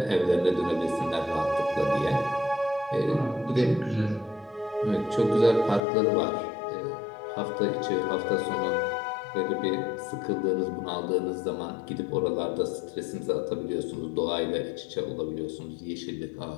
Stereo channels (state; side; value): drops out; right; at 5.8 s